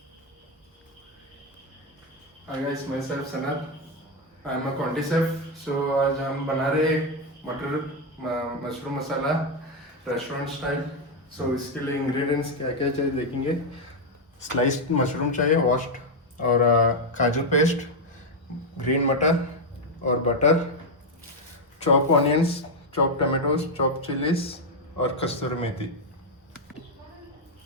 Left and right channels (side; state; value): both; normal; correlation 0.03